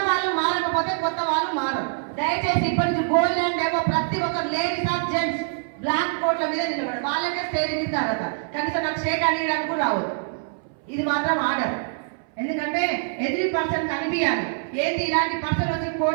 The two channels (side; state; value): left; silent; 61 dB below the other